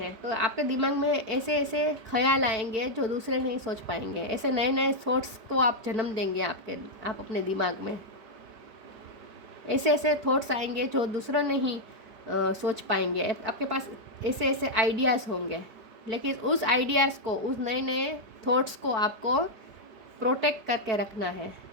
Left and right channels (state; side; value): late; left; 4.5 ms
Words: तो आपके दिमाग में ऐसे ऐसे ख्याल आएंगे जो दूसरे नहीं सोच पाएंगे। ऐसे नए नए थॉट्स को आप जन्म देंगे आप अपने दिमाग में। ऐसे ऐसे थॉट्स आएंगे जो दूसरा नहीं सोच पाएंगे। आपके पास ऐसे ऐसे आइडियाज़ होंगे, लेकिन उस आइडियाज़ को, उस नए नए थॉट्स को आपको प्रोटेक्ट करके रखना है